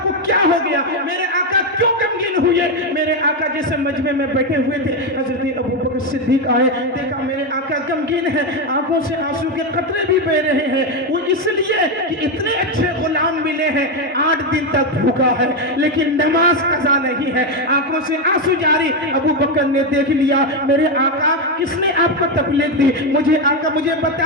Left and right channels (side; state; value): both; normal; correlation 0.08